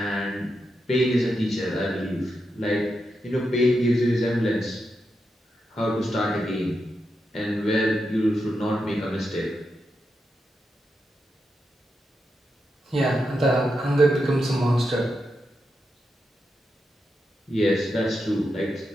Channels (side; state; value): both; normal; correlation 0.86